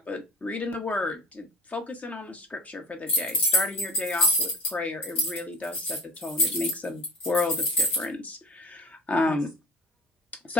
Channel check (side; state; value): both; normal; correlation 0.36